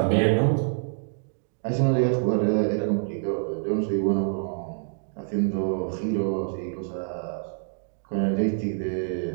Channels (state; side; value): silent; left; digital silence